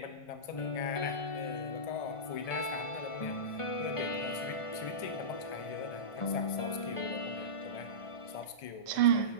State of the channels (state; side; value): late; right; 1.7 ms